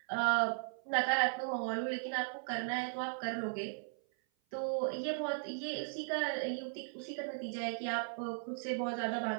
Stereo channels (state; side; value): silent; left; 53 dB below the other